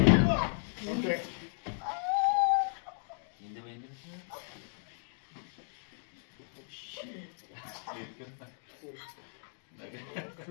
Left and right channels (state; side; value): silent; right; digital silence